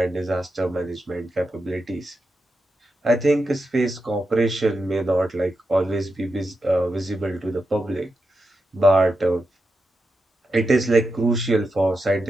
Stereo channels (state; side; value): normal; both; correlation 0.88